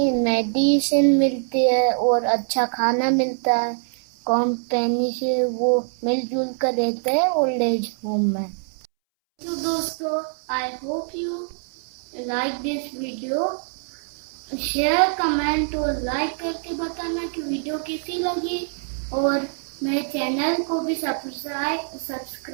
मिलती है और अच्छा खाना मिलता है। कंपनी से वो मिलजुल कर रहते हैं ओल्ड एज होम में। तो दोस्तों, I hope you like this video. Share, comment और लाइक करके बताना कि वीडियो कैसी लगी, और मेरे चैनल को भी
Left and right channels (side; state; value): left; silent; 63 dB below the other